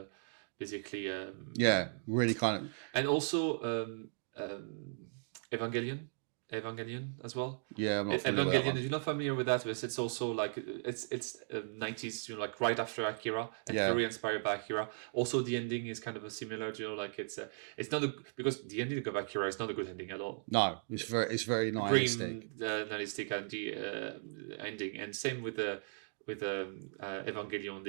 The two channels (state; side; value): silent; left; digital silence